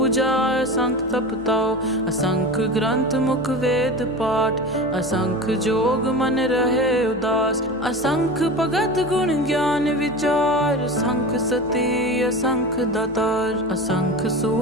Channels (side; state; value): both; normal; correlation 0.29